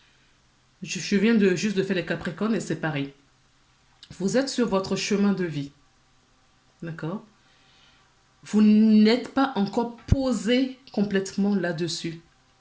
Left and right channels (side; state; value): both; identical; correlation 1.00